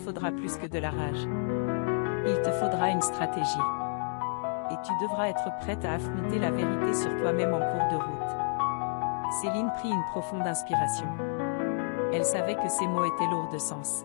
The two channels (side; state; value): right; silent; 58 dB below the other